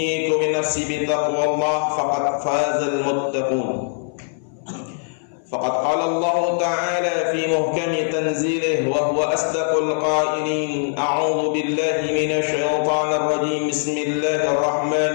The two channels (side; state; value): right; silent; 58 dB below the other